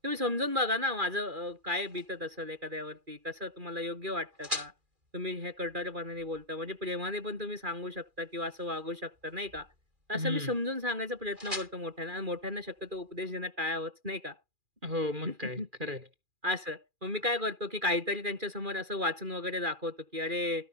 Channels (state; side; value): late; left; 2.4 ms